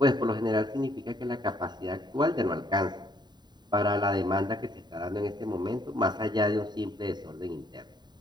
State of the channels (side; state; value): left; late; 0.21 ms